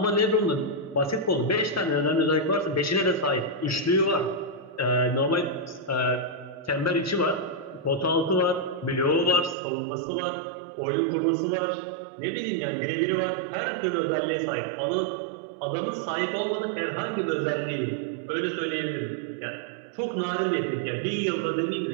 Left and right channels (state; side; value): drops out; left; at 9.6 s